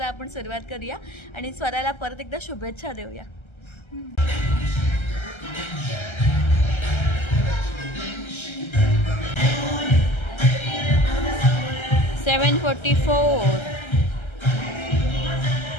आपण सुरुवात करूया आणि स्वराला परत एकदा शुभेच्छा देऊया। 7:44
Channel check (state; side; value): late; right; 1.3 ms